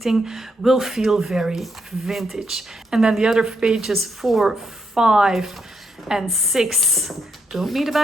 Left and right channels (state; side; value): normal; both; correlation 0.77